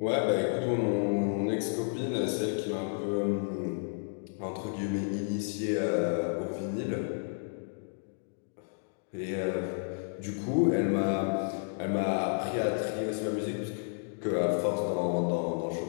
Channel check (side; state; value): right; silent; digital silence